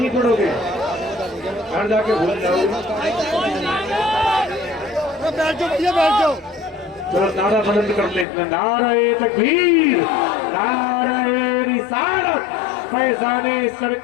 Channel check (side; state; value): right; drops out; at 8.2 s